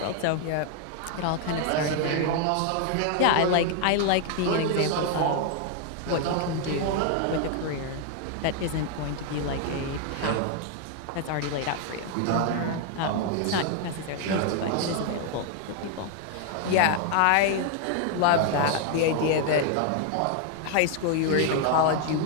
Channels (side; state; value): both; different; correlation 0.00